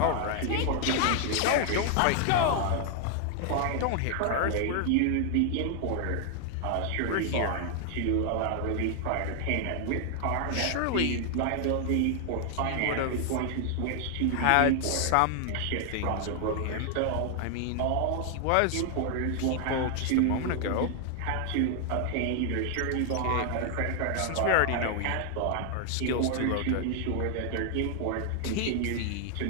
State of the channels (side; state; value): both; different; correlation 0.00